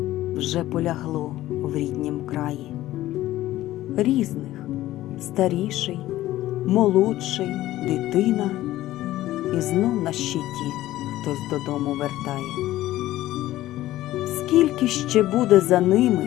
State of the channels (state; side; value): quieter; right; 15.2 dB